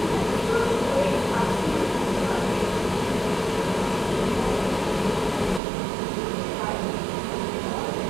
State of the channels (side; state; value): left; drops out; at 5.6 s